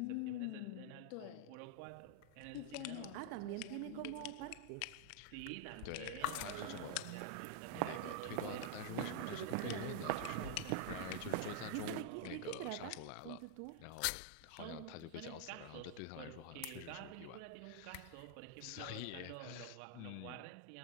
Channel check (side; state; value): both; different; correlation -0.01